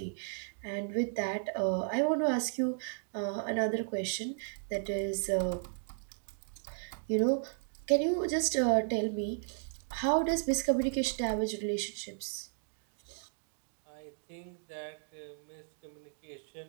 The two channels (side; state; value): left; silent; digital silence